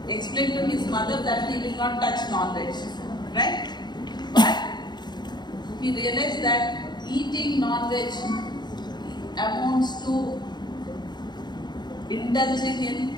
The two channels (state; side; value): late; right; 0.21 ms